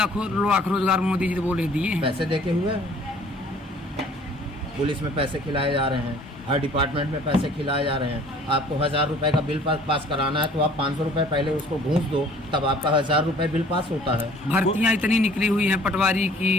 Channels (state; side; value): normal; both; correlation 0.53